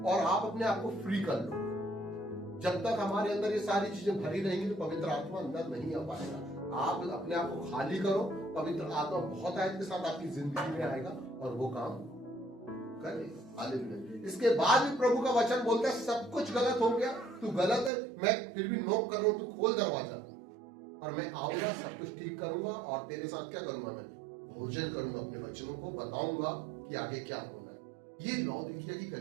और आप अपने आप को फ्री कर लो। जब तक हमारे अंदर ये सारी चीजें भरी रहेंगी तो पवित्र आत्मा अंदर नहीं आ पाएगा। आप अपने आप को खाली करो, पवित्र आत्मा बहुत आयत के साथ आपकी जिंदगी में आएगा और वो काम करेगा। हालेलुया। इसके बाद भी प्रभु का वचन बोलता है सब कुछ गलत हो गया, तू गलत है, मैं फिर भी नोक कर रहा हूं, तू खोल दरवाजा और मैं आऊंगा, सब कुछ ठीक करूंगा और तेरे साथ क्या करूंगा? मैं भोजन करूंगा, अपने बच्चों को बताऊंगा कि आगे क्या होना है। ये लौदीकिया की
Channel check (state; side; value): drops out; left; at 17.9 s